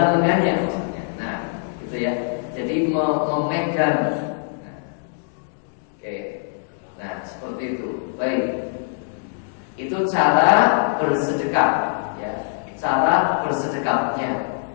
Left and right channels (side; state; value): right; silent; digital silence